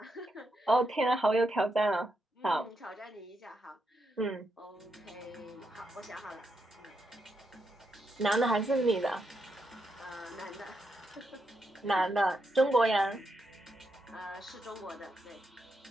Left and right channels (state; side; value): normal; both; correlation 0.82